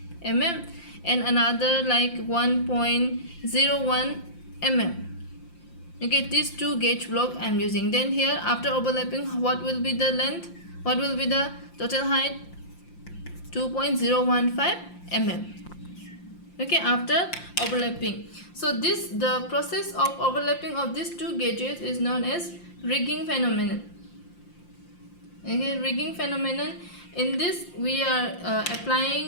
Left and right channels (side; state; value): right; late; 5.7 ms